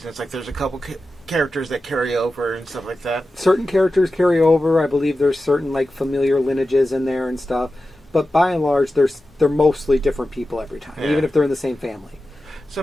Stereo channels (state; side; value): normal; both; correlation 0.93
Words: Like there's a couple characters that carry over and stuff like that. Certain characters carry over. I believe there's certain familiar lineages in there and stuff. But by and large, they're mostly different people every time, even if they're in the same family.